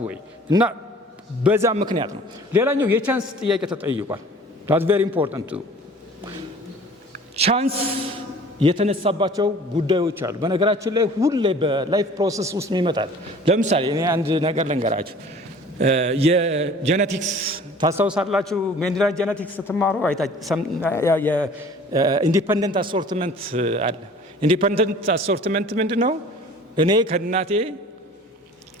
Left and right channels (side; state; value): both; normal; correlation 0.48